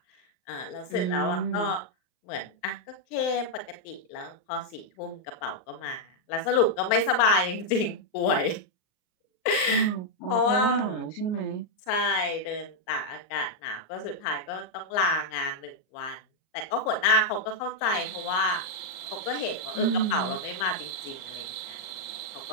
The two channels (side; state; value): right; late; 38 ms